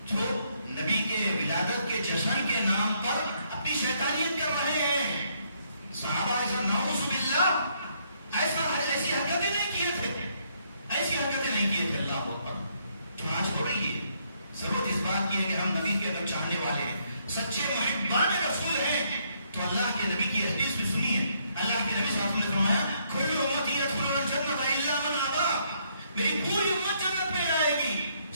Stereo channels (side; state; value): both; inverted; correlation -0.71